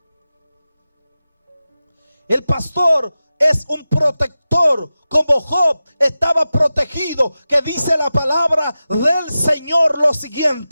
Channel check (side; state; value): both; inverted; correlation -0.93